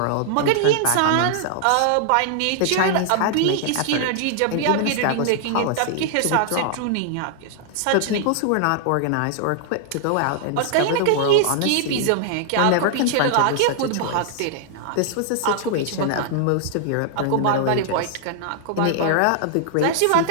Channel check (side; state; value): both; different; correlation -0.01